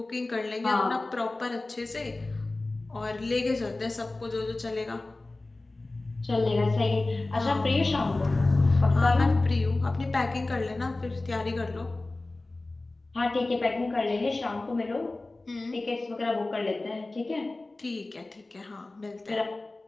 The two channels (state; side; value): quieter; right; 3.0 dB